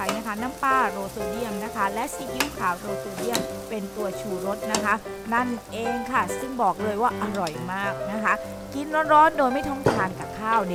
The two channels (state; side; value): identical; both; correlation 1.00